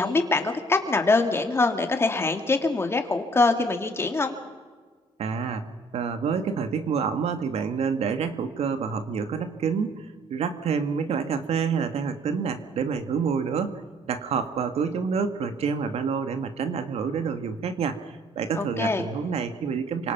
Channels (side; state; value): both; normal; correlation 0.58